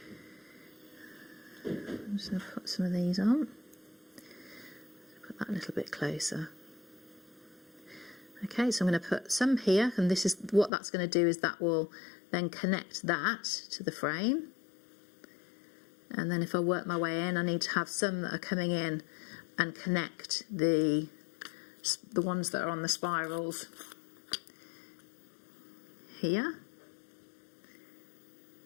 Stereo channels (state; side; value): drops out; right; at 10.7 s